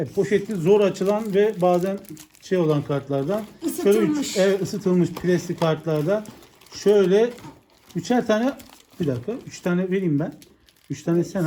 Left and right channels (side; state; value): both; identical; correlation 1.00